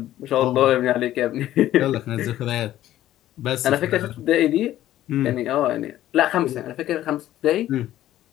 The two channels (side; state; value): right; quieter; 13.4 dB